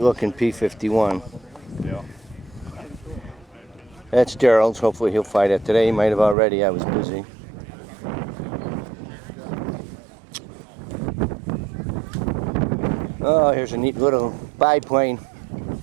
P-51. That's Daryl's. Hopefully he'll fly that today. He might have already. I was busy. Oh, here's a neat little biplane.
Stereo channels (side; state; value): left; drops out; at 6.4 s